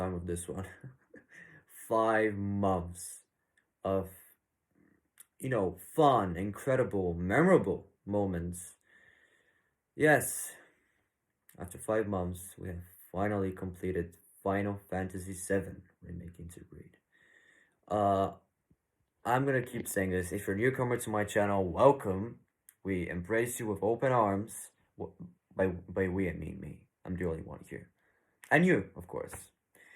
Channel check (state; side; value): identical; both; correlation 1.00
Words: with this one. 5 months of, fun, incredible, memorable moments. Yes, after 5 months, we have finally completed Final Fantasy VII Remake intergrade. Uh, I'm gonna keep saying this. If you're a newcomer to my channel, welcome. We embrace you with open arms. By we, I mean me. I'm the only one here. And you, of course.